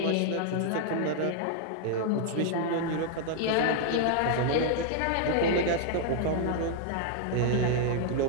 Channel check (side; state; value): both; different; correlation 0.00